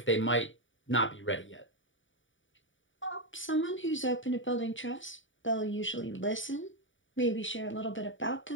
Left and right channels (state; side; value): late; right; 0.56 ms